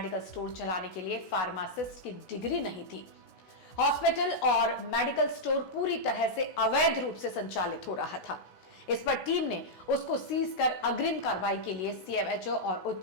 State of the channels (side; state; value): right; late; 16 ms